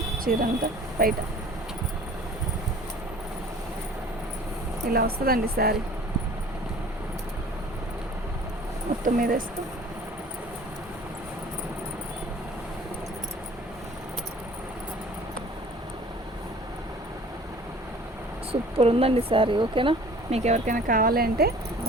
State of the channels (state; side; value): normal; both; correlation 0.48